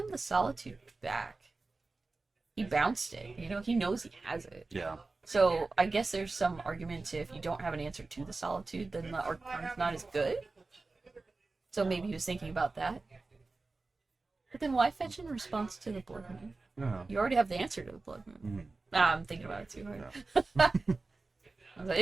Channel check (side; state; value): left; quieter; 3.6 dB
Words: the solitude back. He bounced it. You know, he knows he has it. Yeah. So I guess there's some argument to if you don't have an answer to the solitude, then the arcana's not as good. So maybe he was thinking about that. But then why fetch in response to the Blood Moon? Yeah. You already have the answer to the Blood Moon. I'm thinking about it too hard. Yeah. I was like,